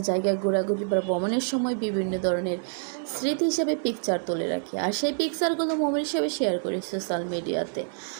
জায়গায় ঘোরাঘুরি বা ভ্রমণের সময় বিভিন্ন ধরনের স্মৃতি হিসেবে পিকচার তুলে রাখি, আর সেই পিকচারগুলো মোমেন্ট হিসেবে শেয়ার করি সোশ্যাল মিডিয়াতে।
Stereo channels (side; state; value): left; silent; 60 dB below the other